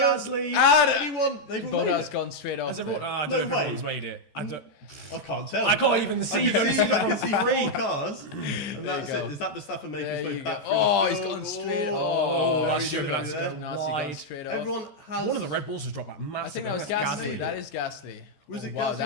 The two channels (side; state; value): right; late; 14 ms